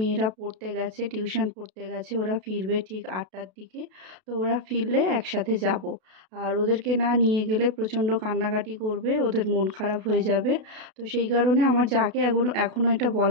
পড়তে গেছে, টিউশন পড়তে গেছে, ওরা ফিরবে ঠিক 8টার দিকে। তো ওরা ফিরলে একসাথে যাব। আর ওদেরকে না নিয়ে গেলে প্রচণ্ড কান্নাকাটি করবে, ওদের মন খারাপ হয়ে যাবে। তো সেই কারণে আমার যাকে এখনও এটা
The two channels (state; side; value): late; left; 32 ms